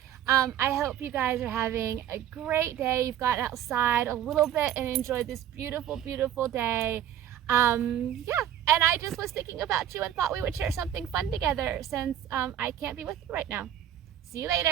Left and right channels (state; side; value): quieter; left; 10.6 dB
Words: I hope you guys are having a great day. You've gotten outside a little bit and enjoyed this beautiful, beautiful day. And I just was thinking about you and thought we would share something fun together since I can't be with you right now. See you